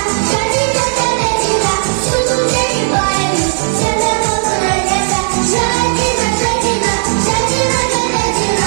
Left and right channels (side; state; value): left; silent; digital silence